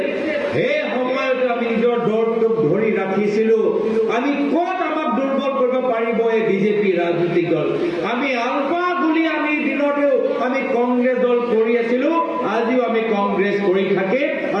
সেই সময়ত আমি নিজৰ দলটোক ধৰি ৰাখিছিলো। আমি ক'ত আমাক দুৰ্বল কৰিব পাৰিব এই বিজেপি ৰাজনৈতিক দল? আমি আলফা গুলি আমি দিনতেও আমি কংগ্ৰেছ দল কৰি আছিলো, আজিও আমি কংগ্ৰেছ কৰি থাকে,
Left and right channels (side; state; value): both; identical; correlation 1.00